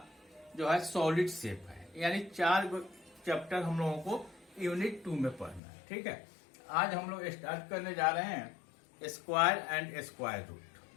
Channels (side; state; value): right; drops out; at 5.6 s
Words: जो है सॉलिड शेप है। यानी 4 चैप्टर हम लोगों को यूनिट 2 में पढ़ना है। ठीक है, आज हम लोग स्टार्ट करने जा रहे हैं स्क्वायर एंड स्क्वायर रूट।